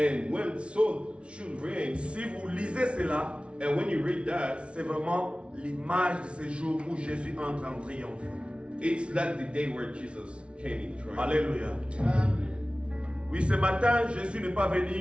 when Saul should reign, si vous lisez cela, and when you read that, c'est vraiment l'image de ce jour où Jésus entre en triomphe. it's like the day where Jesus came in triumph. Alléluia. Oui, ce matin, Jésus n'est pas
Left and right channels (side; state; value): left; late; 0.059 ms